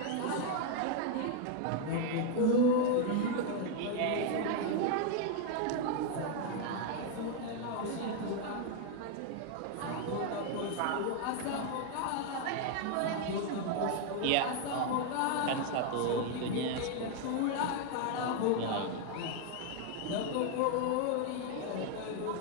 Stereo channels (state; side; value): different; both; correlation 0.01